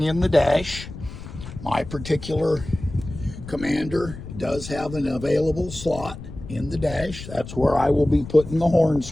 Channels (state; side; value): noise; left; rumble, 12 dB below the sound